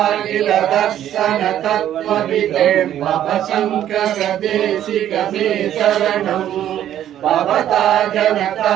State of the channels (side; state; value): left; quieter; 11.3 dB